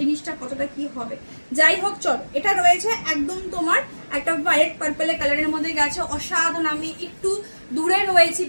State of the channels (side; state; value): both; inverted; correlation -1.00